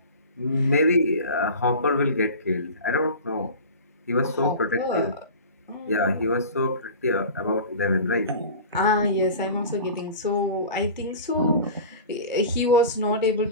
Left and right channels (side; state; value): both; inverted; correlation -0.36